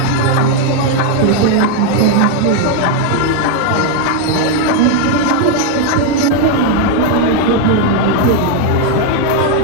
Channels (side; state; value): both; different; correlation 0.01